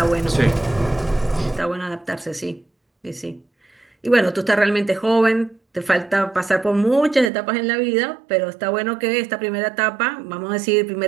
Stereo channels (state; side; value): drops out; left; at 7.3 s